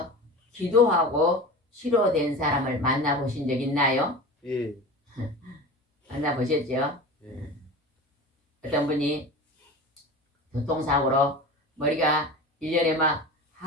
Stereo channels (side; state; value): both; normal; correlation 0.32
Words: 기도하고 치료된 사람을 만나보신 적 있나요? 예. 만나보셨죠? 예. 어떤 분이 교통사고로 머리가 1년에 막